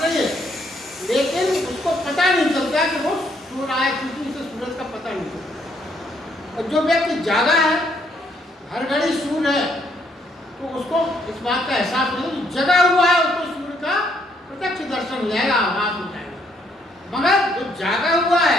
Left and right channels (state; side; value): normal; both; correlation 0.71